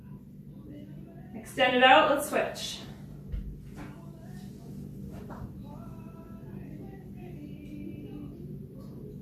Extend it out, let's switch.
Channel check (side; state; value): both; identical; correlation 1.00